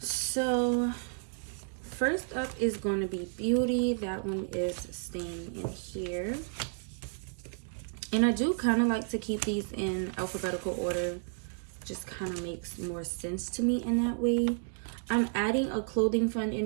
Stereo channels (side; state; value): left; silent; 57 dB below the other